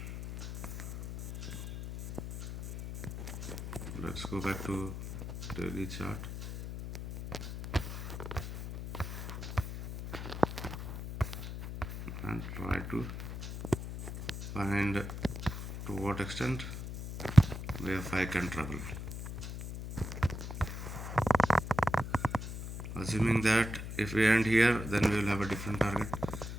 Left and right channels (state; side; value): noise; left; hum, 7 dB below the sound